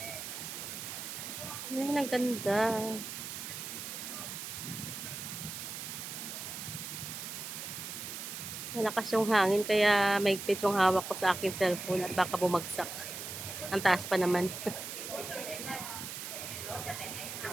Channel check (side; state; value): right; noise; hiss, 7 dB below the sound